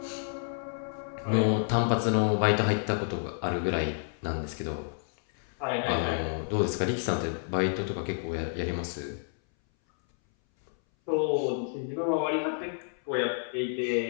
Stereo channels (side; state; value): right; silent; 58 dB below the other